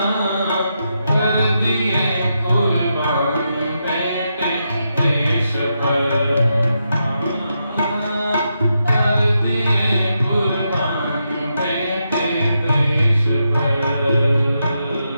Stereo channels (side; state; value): both; inverted; correlation -0.84